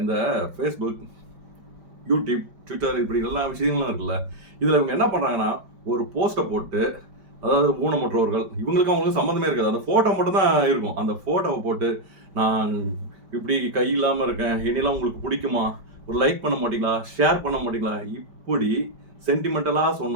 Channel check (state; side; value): late; left; 5.1 ms